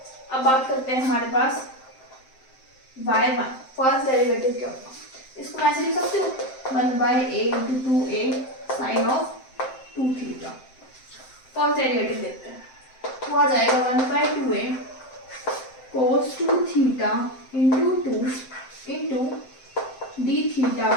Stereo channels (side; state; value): right; late; 7.7 ms